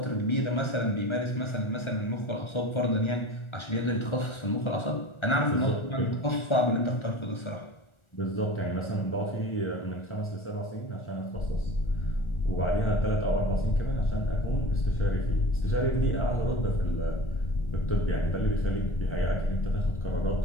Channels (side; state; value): right; late; 1.4 ms